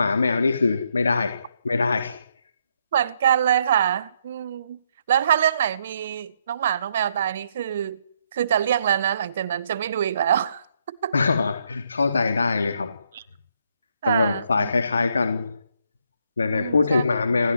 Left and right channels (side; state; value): both; inverted; correlation -0.74